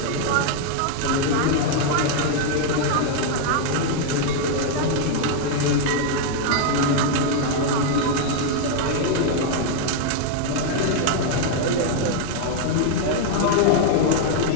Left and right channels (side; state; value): both; different; correlation 0.00